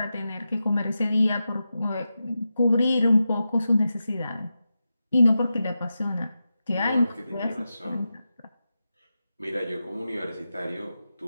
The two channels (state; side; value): inverted; both; correlation -0.91